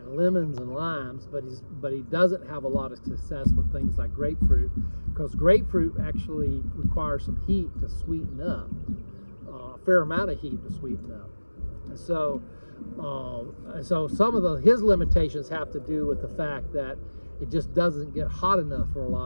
lemons and limes, but he doesn't have a lot of success with things like grapefruit, because grapefruit actually requires some heat to sweeten up, a fair amount of heat to sweeten up. And so some of his limitations have to do with the fact that it just doesn't get hot enough for a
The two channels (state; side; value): inverted; both; correlation -1.00